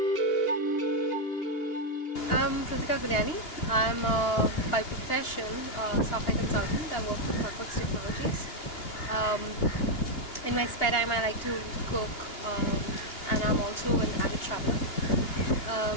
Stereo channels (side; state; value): right; late; 2.8 ms